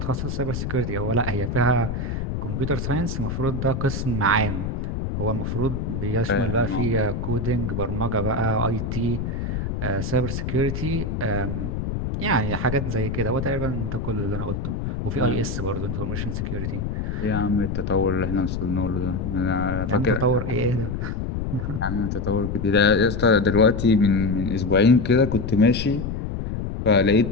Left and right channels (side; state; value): left; noise; rumble, 3 dB below the sound